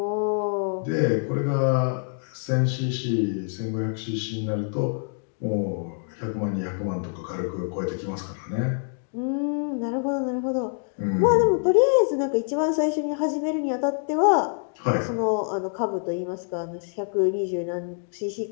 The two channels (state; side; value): silent; right; 61 dB below the other